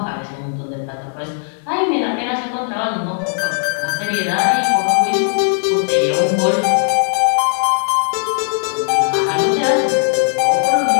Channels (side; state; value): right; silent; 59 dB below the other